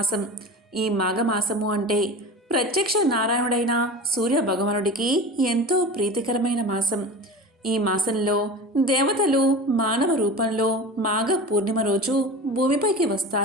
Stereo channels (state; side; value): normal; both; correlation 0.33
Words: ఈ మాఘమాసము అంటే ప్రత్యక్ష నారాయణుడైన సూర్య భగవానుడికి ఎంతో ప్రీతికరమైన మాసం. ఈ మాసంలో దేవతలు మానవ రూపంలో మాఘ పూర్ణిమ రోజు భూమిపైకి